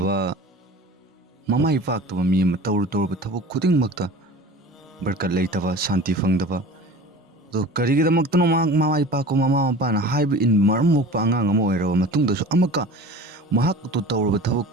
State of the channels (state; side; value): normal; both; correlation 0.39